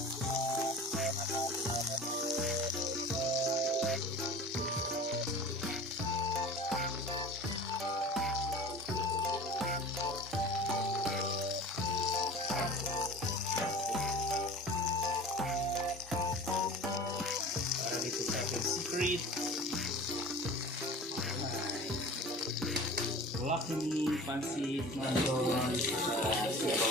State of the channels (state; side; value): normal; both; correlation 0.39